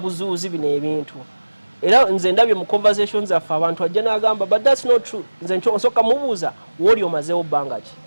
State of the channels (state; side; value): inverted; both; correlation -1.00